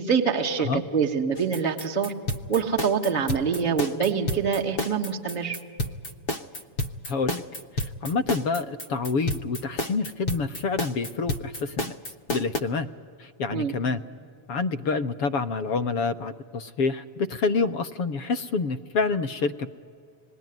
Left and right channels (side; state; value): right; late; 7.2 ms